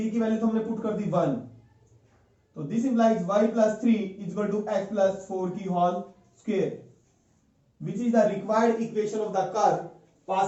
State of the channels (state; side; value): identical; both; correlation 1.00